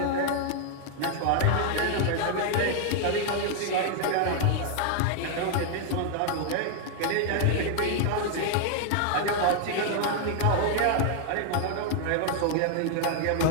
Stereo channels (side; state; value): both; different; correlation 0.00